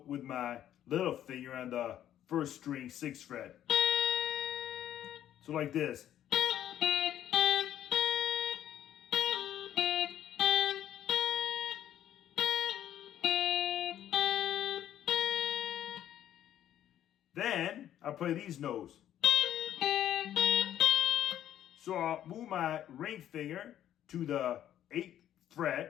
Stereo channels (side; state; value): right; quieter; 11.3 dB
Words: with my little finger on the 1st string, 6th fret. So like this. Then I'll play these notes. So I'll move my ring finger to the 8th